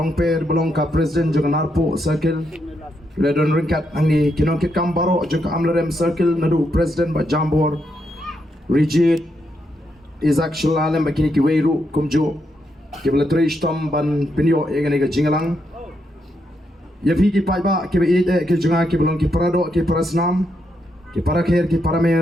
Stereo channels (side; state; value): both; normal; correlation 0.80